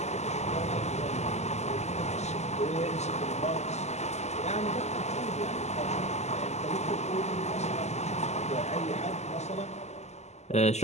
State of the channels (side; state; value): right; late; 0.33 ms